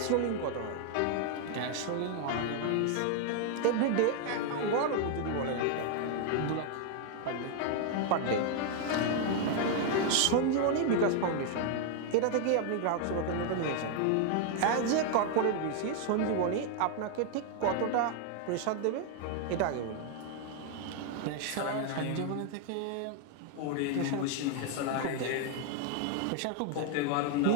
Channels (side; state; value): both; different; correlation 0.00